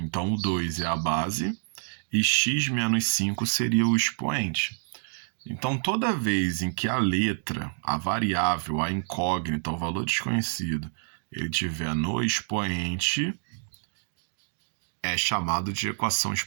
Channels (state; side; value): silent; left; digital silence